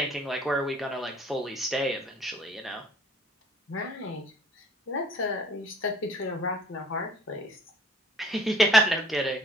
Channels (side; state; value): both; normal; correlation 0.54